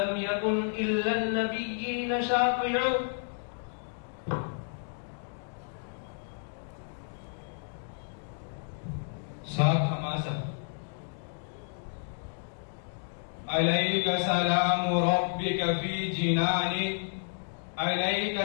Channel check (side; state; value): right; silent; digital silence